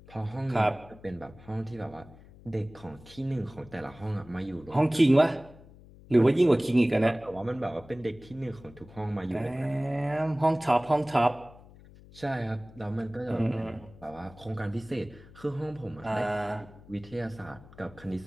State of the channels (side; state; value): left; noise; hum, 21 dB below the sound